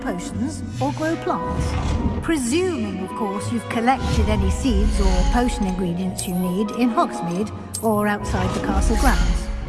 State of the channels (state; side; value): identical; both; correlation 1.00